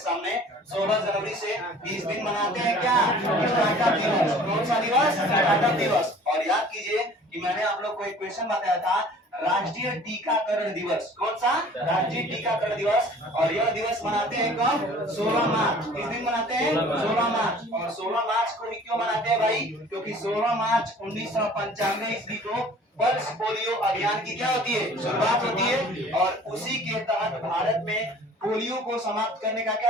16 जनवरी से 20 दिन मनाते हैं क्या? स्टार्टअप दिवस। कौन सा दिवस? स्टार्टअप दिवस। और याद कीजिए कि मैंने आप लोग को एक क्वेश्चन बताया था, राष्ट्रीय टीकाकरण दिवस। कौन सा? राष्ट्रीय टीकाकरण दिवस। और यह दिवस मनाते हैं कब? 16 मार्च। किस दिन मनाते हैं? 16 मार्च। और 16 मार्च को भी क्यों मनाते हैं भाई? क्योंकि 16 मार्च 1995 ईस्वी को पल्स पोलियो अभियान की क्या होती है? शुरुआत होती है। और उसी के तहत भारत में पोलियो को समाप्त करने का क्या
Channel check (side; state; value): both; normal; correlation 0.49